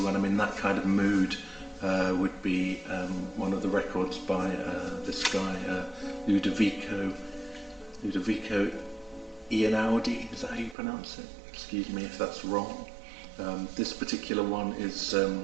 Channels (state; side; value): drops out; left; at 10.8 s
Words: when I'm in that kind of mood would be one of the records by this guy, Ludovico Einaudi, is that how you pronounce it? Excuse me if that's wrong. This particular one is